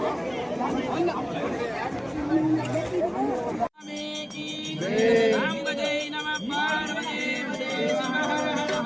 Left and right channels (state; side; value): identical; both; correlation 1.00